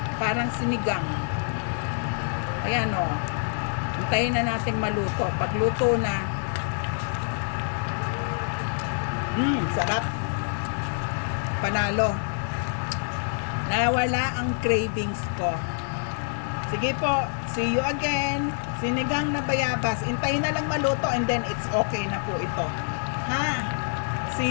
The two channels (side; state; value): right; silent; digital silence